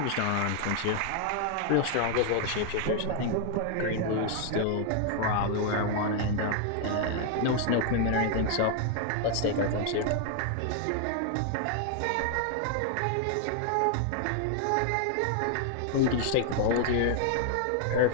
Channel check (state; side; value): different; both; correlation 0.00